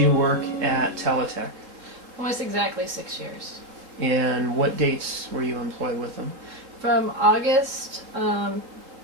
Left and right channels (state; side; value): late; left; 3.6 ms